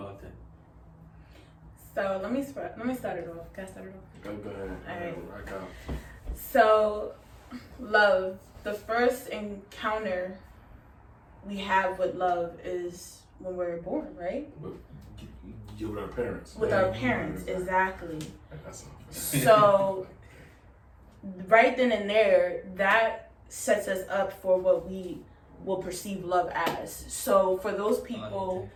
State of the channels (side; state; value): both; identical; correlation 1.00